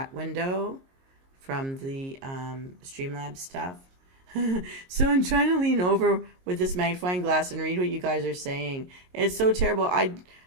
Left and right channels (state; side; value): late; left; 22 ms